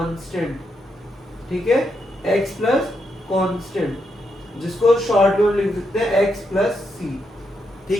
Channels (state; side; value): normal; both; correlation 0.81